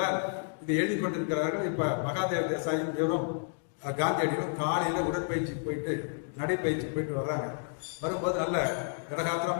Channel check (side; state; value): right; silent; digital silence